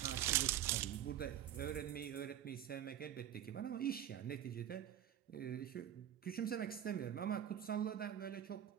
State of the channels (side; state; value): left; quieter; 10.8 dB